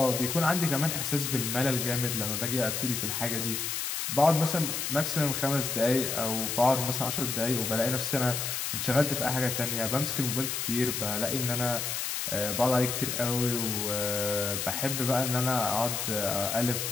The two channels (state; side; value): noise; left; hiss, 2 dB below the sound